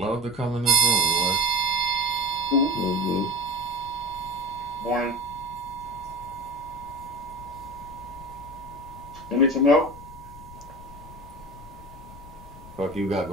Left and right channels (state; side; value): noise; left; rumble, 17 dB below the sound